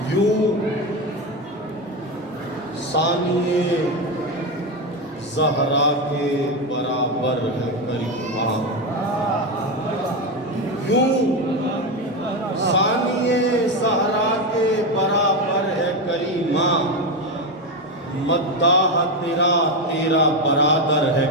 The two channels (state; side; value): normal; both; correlation 0.13